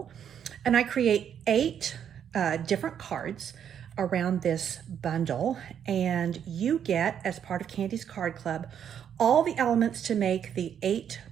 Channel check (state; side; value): quieter; left; 8.8 dB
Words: and I create 8 different cards around this bundle, and you get, as part of Candy's Card Club, all the elements to make the 8